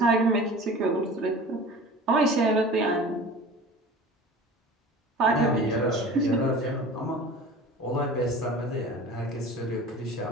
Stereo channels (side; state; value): both; normal; correlation 0.39